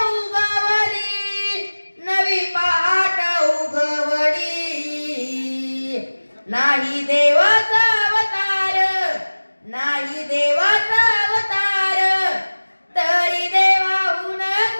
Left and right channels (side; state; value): both; inverted; correlation -1.00